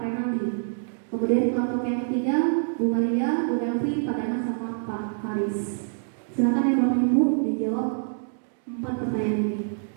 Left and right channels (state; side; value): silent; left; 61 dB below the other